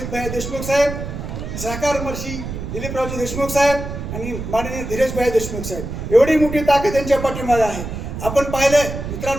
भाई देशमुख साहेब, सहकार मंत्री दिलीपरावजी देशमुख साहेब आणि माननीय धीरजभाई देशमुख साहेब, एवढी मोठी ताकद यांच्या पाठीमागे आहे. आपण पाहिलं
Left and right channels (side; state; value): right; noise; rumble, 7 dB below the sound